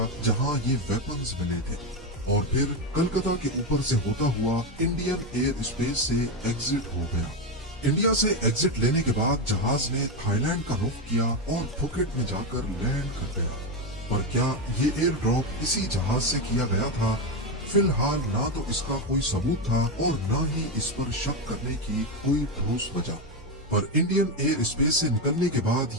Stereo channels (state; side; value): normal; both; correlation 0.11